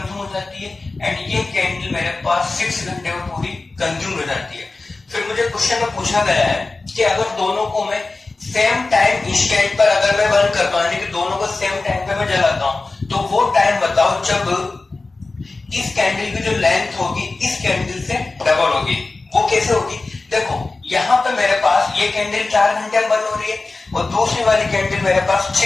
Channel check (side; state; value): right; quieter; 3.5 dB